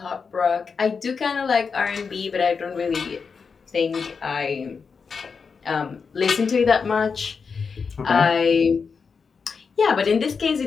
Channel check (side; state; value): right; quieter; 5.5 dB